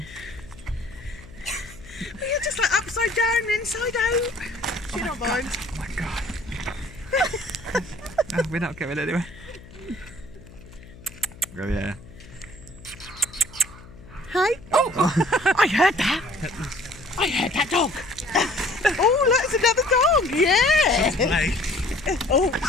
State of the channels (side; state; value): left; noise; hum, 19 dB below the sound